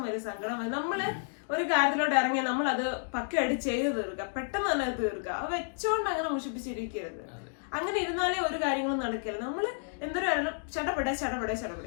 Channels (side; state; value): right; silent; digital silence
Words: വരും, സങ്കടം വരും. നമ്മള് ഒരു കാര്യത്തിലോട്ട് ഇറങ്ങിയാൽ നമ്മൾ അത് പക്കയായിട്ട് ചെയ്ത് തീർക്കുക, പെട്ടെന്ന് തന്നെ തീർക്കുക. അത് വെച്ചോണ്ട് അങ്ങനെ മുഷിപ്പിച്ചിരിക്കരുത്. അങ്ങനെ ഇരുന്നാലേ ഒരു കാര്യങ്ങളും നടക്കരുത്. നമ്മള് എന്തൊരു കാരണം ഷടപടി